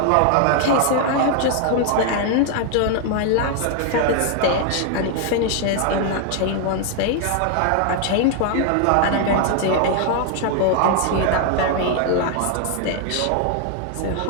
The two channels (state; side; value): different; both; correlation 0.00